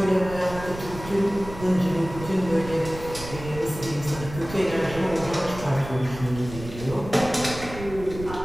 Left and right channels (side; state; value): right; noise; rumble, 12 dB below the sound